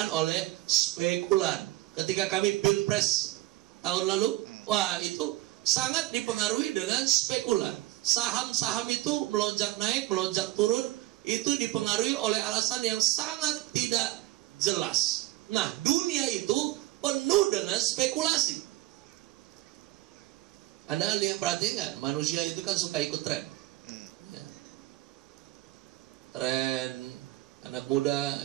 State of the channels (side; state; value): left; quieter; 17.6 dB